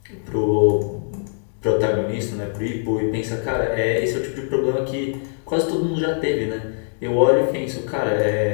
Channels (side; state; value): right; silent; 62 dB below the other